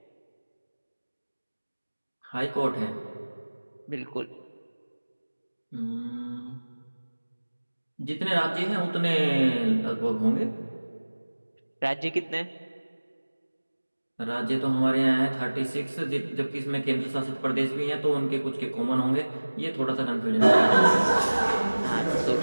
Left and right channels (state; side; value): inverted; both; correlation -1.00